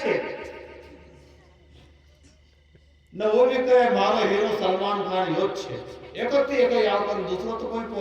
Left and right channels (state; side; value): identical; both; correlation 1.00